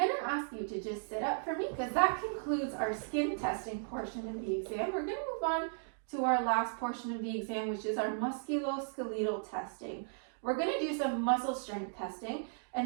to ask you to just sit up for me because that concludes our skin testing portion of the exam. We're going to move on to our last portion of the exam, which is our musculoskeletal testing. We're going to do some muscle strength testing,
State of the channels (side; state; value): left; silent; digital silence